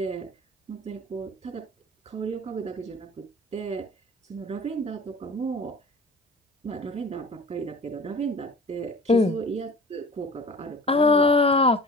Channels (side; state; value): both; normal; correlation 0.42